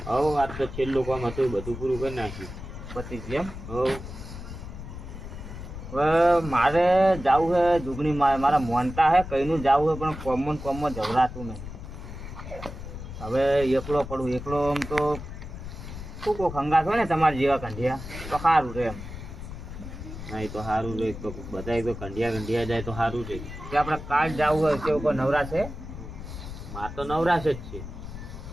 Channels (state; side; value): noise; left; rumble, 10 dB below the sound